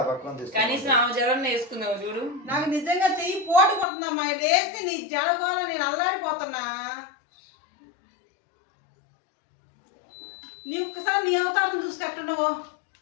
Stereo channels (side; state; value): right; drops out; at 3.9 s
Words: పక్కన తీసుకు. కనీసం ఆ జడన్న వేసుకుందావు చూడు. నాకు నిజంగా చెయ్యి పోటు కొడుతుందమ్మా. లేస్తే నీ జడగోళ నేను అల్లాడిపోతున్నా. నీ ఒక్కసారి నీ అవతారం చూసుకెట్టున్నావు.